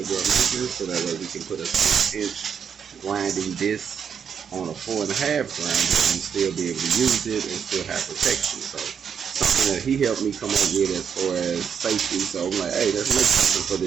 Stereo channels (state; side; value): quieter; left; 7.3 dB